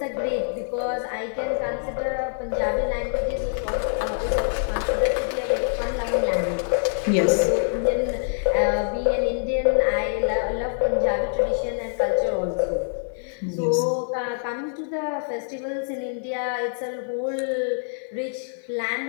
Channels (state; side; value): silent; right; digital silence